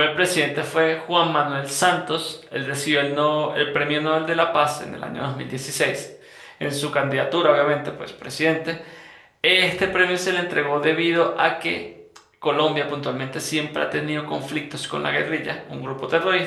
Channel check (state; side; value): identical; both; correlation 1.00